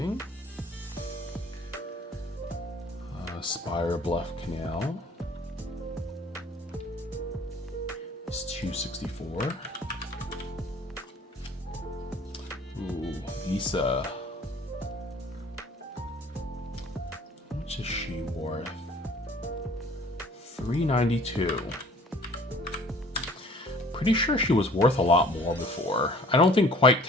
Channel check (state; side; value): normal; both; correlation 0.51